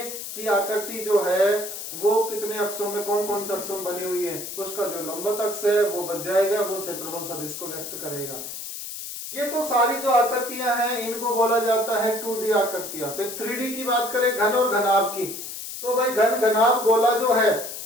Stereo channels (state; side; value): noise; left; hiss, 8 dB below the sound